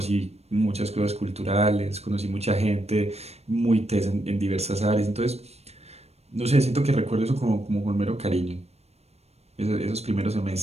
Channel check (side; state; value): left; late; 0.31 ms